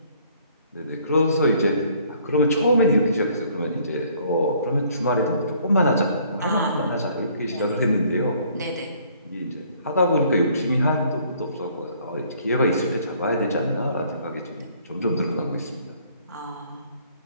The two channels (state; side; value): inverted; both; correlation -0.61